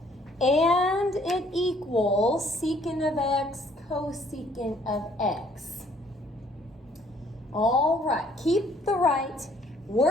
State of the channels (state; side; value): normal; both; correlation 0.62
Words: and it equals secant of x cosecant of x. All right, keep the right,